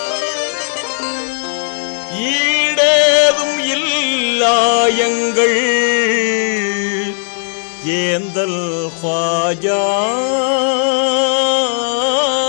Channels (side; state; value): right; silent; digital silence